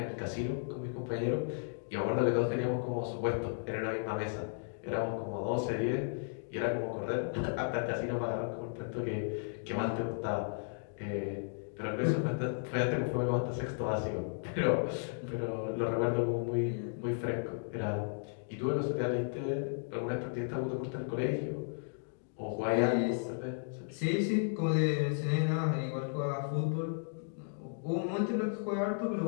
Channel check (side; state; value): right; silent; digital silence